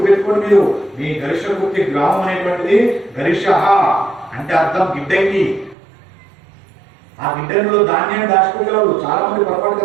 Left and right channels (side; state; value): left; drops out; at 5.8 s